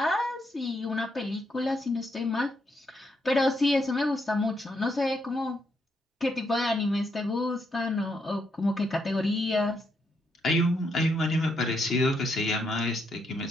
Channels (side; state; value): both; normal; correlation 0.78